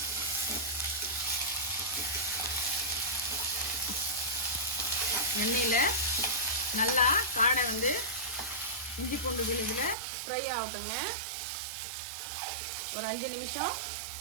எண்ணெயில் நல்லா காடை இஞ்சி பூண்டு விழுதில் ஃப்ரை ஆகட்டுங்க. ஒரு 5 நிமிஷம்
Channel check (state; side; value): drops out; left; at 10.0 s